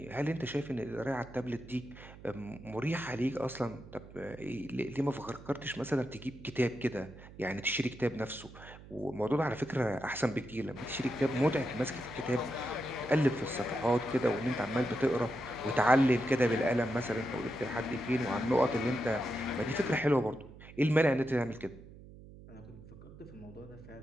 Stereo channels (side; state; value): right; noise; hum, 18 dB below the sound